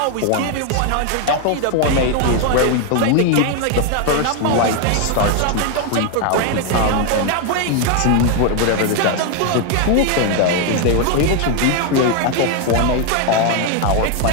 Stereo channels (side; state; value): both; different; correlation 0.01